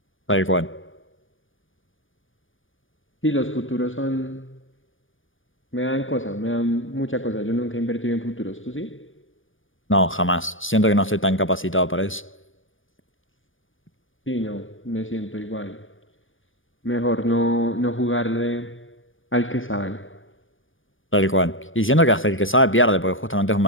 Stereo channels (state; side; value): late; right; 0.58 ms